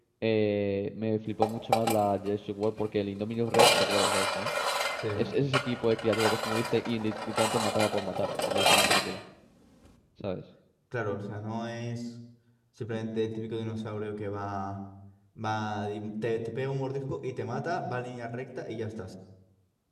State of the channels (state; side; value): identical; both; correlation 1.00